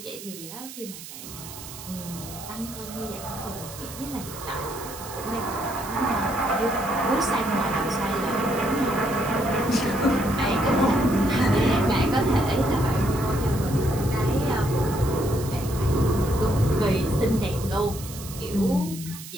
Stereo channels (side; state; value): right; noise; hiss, 13 dB below the sound